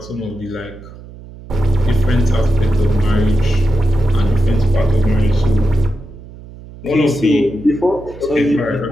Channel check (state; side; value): noise; right; hum, 17 dB below the sound